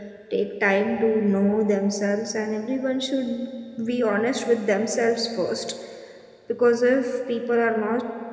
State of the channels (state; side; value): identical; both; correlation 1.00